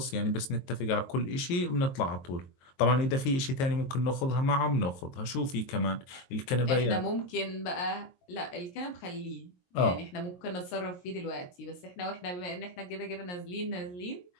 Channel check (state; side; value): late; right; 22 ms